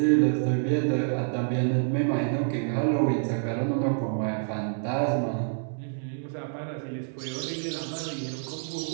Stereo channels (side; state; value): left; silent; 60 dB below the other